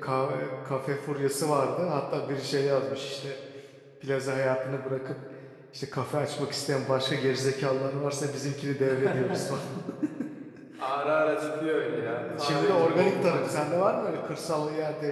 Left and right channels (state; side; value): identical; both; correlation 1.00